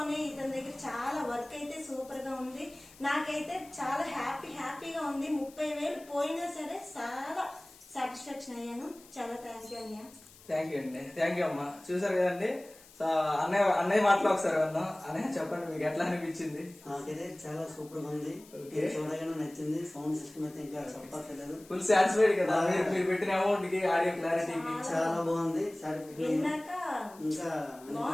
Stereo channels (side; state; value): left; noise; hiss, 23 dB below the sound